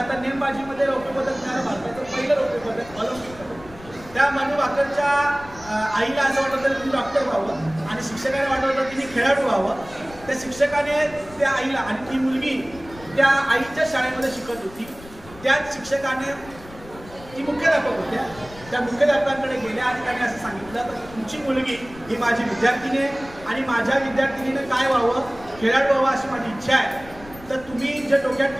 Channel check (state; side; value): noise; left; rumble, 19 dB below the sound